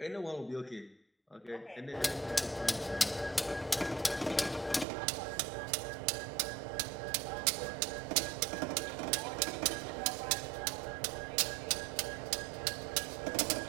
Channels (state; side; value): drops out; left; at 4.9 s